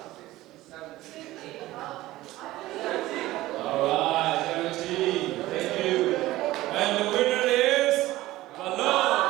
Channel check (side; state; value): left; quieter; 17.0 dB